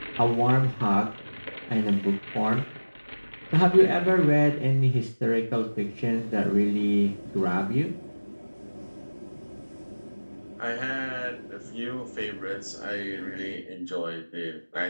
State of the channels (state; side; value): inverted; both; correlation -1.00